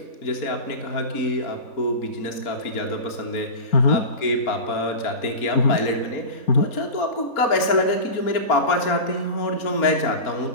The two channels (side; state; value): right; late; 4.3 ms